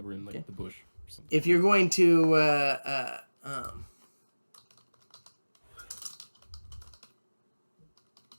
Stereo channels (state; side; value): inverted; both; correlation -1.00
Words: were in the bush or something. If you're going to